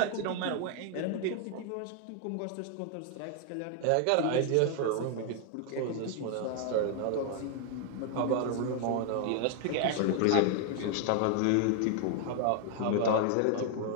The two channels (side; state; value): both; different; correlation 0.00